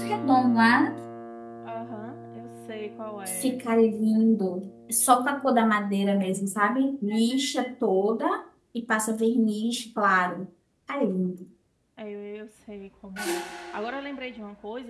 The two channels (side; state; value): both; identical; correlation 1.00